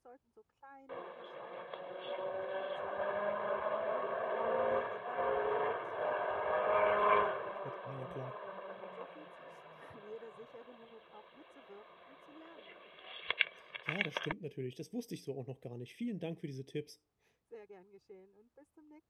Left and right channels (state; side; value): identical; both; correlation 1.00